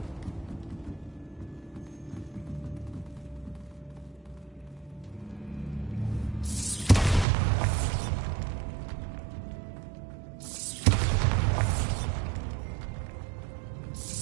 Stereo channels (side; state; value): left; drops out; at 7.2 s